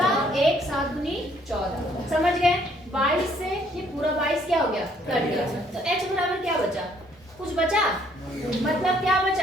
1 7 दूनी 14, समझ गए। 22 से ये पूरा 22 क्या हो गया, कट गया। तो h बराबर क्या बचा, कुछ बचा, मतलब क्या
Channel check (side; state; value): both; normal; correlation 0.64